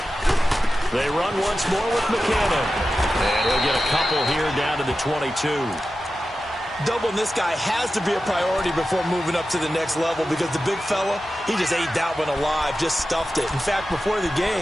They run once more with McKinnon. And he'll get a couple here down to the 22. Doubling this guy has to be a priority before moving up to the next level because the big fella, he just ate that one alive, just stuffed it. In fact, before the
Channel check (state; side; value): normal; both; correlation 0.93